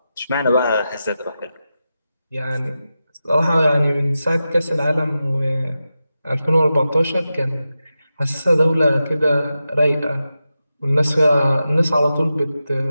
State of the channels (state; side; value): inverted; both; correlation -0.91